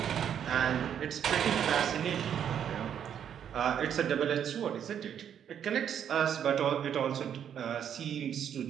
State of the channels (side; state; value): left; quieter; 8.9 dB